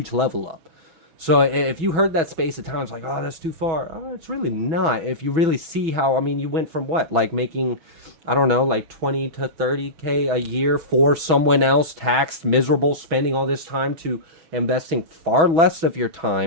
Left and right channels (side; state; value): left; late; 6.1 ms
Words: level up. So if you heard that space of time, it's like, oh, that's too far. Oh, it's really not. If you really see how, I mean, you went from what, like making, I don't know, like 20 to 30K a year for someone else, taxed, miserable, spending all this time, to investing far less of your